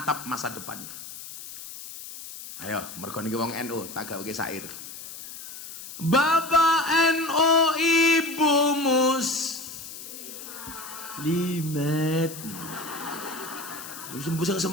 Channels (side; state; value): left; noise; hiss, 12 dB below the sound